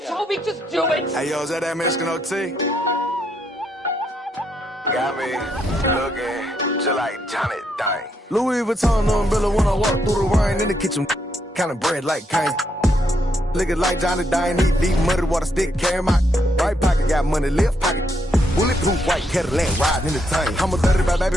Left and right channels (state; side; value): normal; both; correlation 0.77